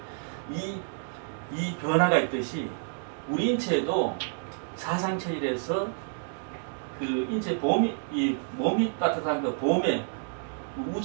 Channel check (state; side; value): silent; left; digital silence